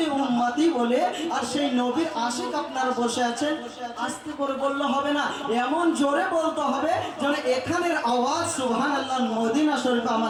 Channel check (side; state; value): both; identical; correlation 1.00